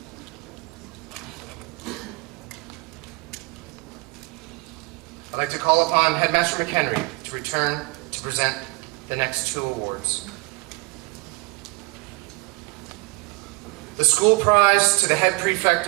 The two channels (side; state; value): left; quieter; 27.2 dB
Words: I'd like to call upon Headmaster McHenry to return to present the next 2 awards. The school prize to the head